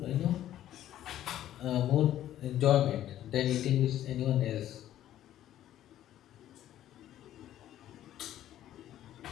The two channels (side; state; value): right; quieter; 12.3 dB